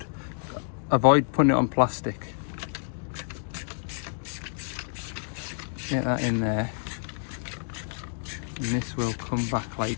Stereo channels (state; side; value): silent; right; digital silence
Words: Avoid putting it on plastic. Get that in there. And this will come back